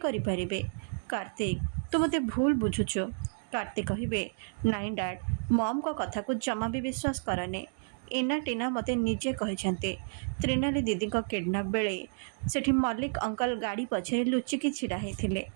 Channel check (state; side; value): silent; left; digital silence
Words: କରିପାରିବେ? କାର୍ତ୍ତିକ ତୁ ମୋତେ ଭୁଲ ବୁଝୁଛୁ। କାର୍ତ୍ତିକ କହିବେ ନାଇଁ ଡାଡ୍, ମମ୍ଙ୍କ କଥାକୁ ଜମା ବି ବିଶ୍ୱାସ କରନି। ଇନା ଟିନା ମୋତେ ନିଜେ କହିଛନ୍ତି ତ୍ରିନାଲି ଦିଦିଙ୍କ କିଡନାପ୍ ବେଳେ ସେଠି ମଲ୍ଲିକ ଅଙ୍କଲ ଗାଡ଼ି ପଛରେ ଲୁଚିକି ଛିଡ଼ା ହେଇଥିଲେ।